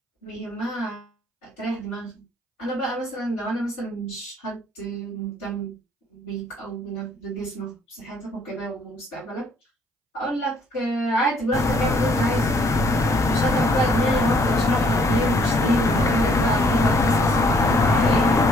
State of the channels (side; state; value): both; normal; correlation 0.63